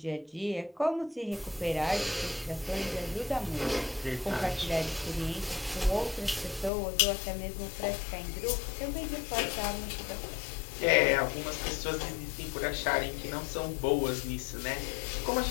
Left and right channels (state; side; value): drops out; right; at 6.7 s